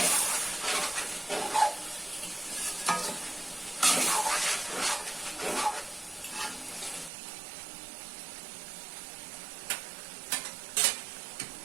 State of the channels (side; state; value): left; drops out; at 7.1 s